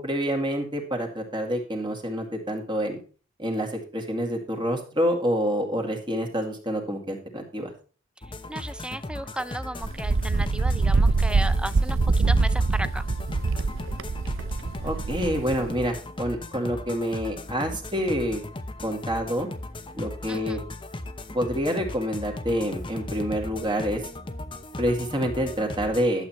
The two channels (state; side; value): normal; both; correlation 0.76